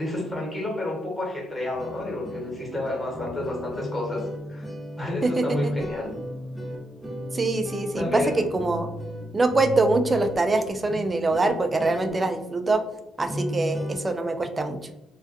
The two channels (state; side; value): normal; both; correlation 0.83